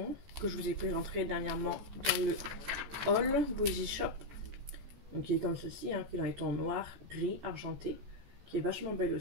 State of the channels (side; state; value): left; late; 14 ms